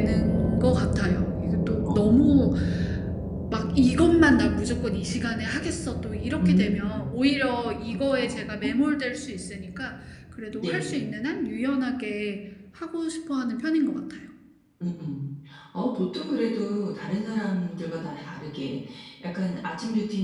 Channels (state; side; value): identical; both; correlation 1.00